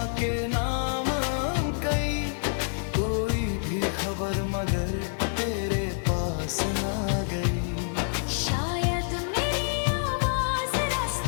के नाम कई, कोई भी खबर मगर तेरे पास ना गई। शायद मेरी आवाज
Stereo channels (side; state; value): right; silent; digital silence